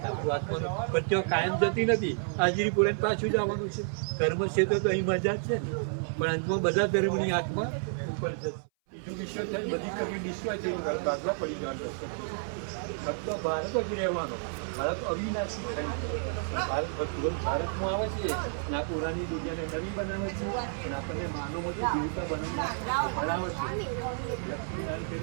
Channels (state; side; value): silent; left; 57 dB below the other